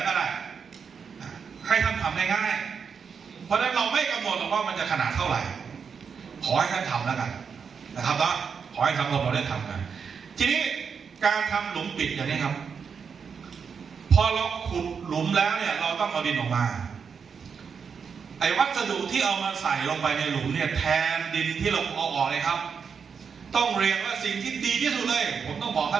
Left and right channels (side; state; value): left; quieter; 6.3 dB